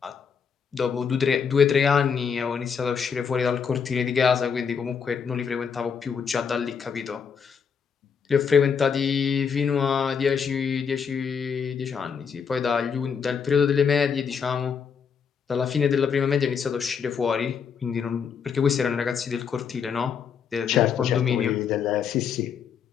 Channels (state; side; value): quieter; right; 6.6 dB